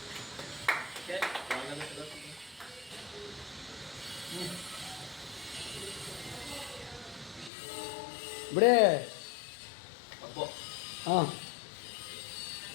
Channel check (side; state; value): right; drops out; at 7.5 s